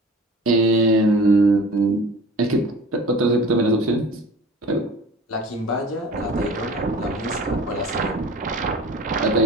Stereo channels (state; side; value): normal; both; correlation 0.42